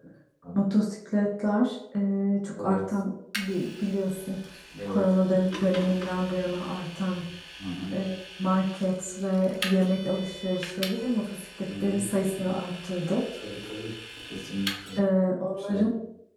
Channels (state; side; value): identical; both; correlation 1.00